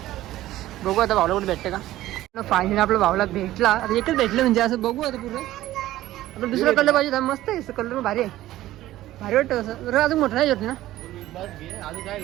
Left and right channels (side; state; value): left; quieter; 15.1 dB